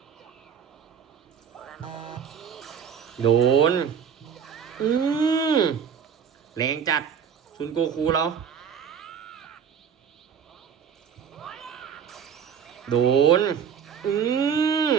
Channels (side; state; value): left; quieter; 7.7 dB